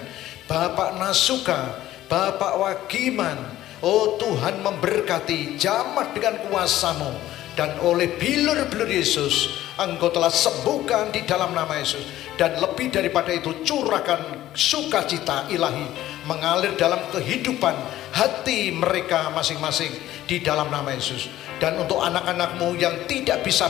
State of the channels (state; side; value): quieter; right; 14.1 dB